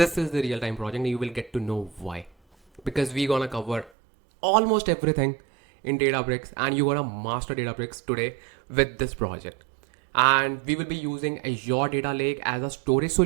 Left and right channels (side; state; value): left; drops out; at 3.9 s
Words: is the real-time project, and you will get to know why. Because we're gonna cover almost everything in Databricks, and you're gonna master Databricks today with this project. And we will be using Azure Data Lake as a storage